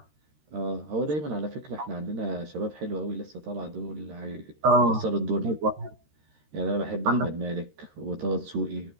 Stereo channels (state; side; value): late; left; 13 ms